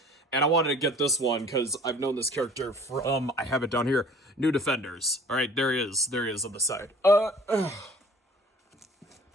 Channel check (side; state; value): both; normal; correlation 0.49